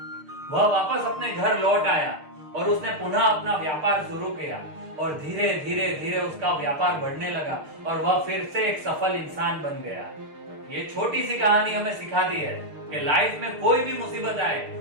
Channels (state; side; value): late; left; 6.6 ms